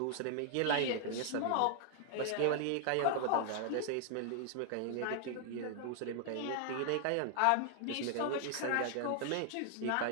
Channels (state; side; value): different; both; correlation 0.00